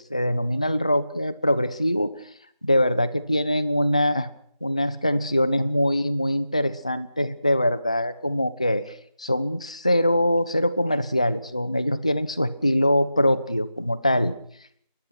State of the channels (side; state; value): both; inverted; correlation -0.89